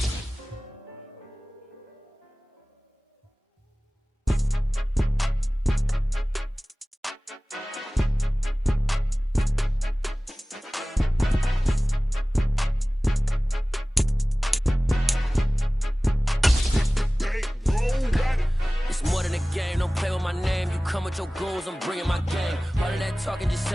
It's more than a game, don't play with my name. You come with your goons, I'm bringing my game. All of that talking just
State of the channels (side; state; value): both; normal; correlation 0.98